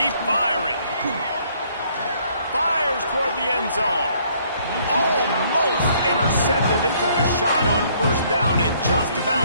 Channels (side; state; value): both; inverted; correlation -0.64